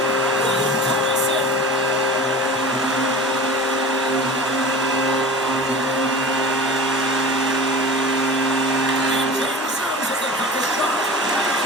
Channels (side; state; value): both; normal; correlation 0.36